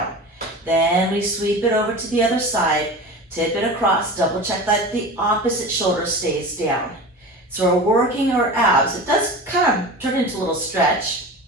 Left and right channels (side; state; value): both; normal; correlation 0.33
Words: Then we sweep it over to the other side, tip it across, double check that the opposite shoulder stays down. So we're working our abs. It does kind of turn into a little stretch,